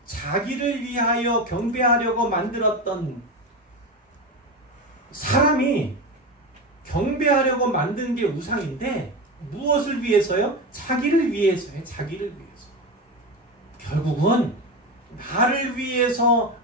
자기를 위하여 경배하려고 만들었던, 사람이 경배하려고 만든 게 우상인데 무엇을 위해서요? 자기를 위해서요. 자기를 위해서. 결국은 나를 위해서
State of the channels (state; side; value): normal; both; correlation 0.20